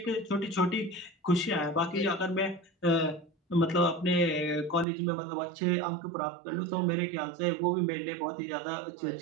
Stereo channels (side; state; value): left; drops out; at 4.9 s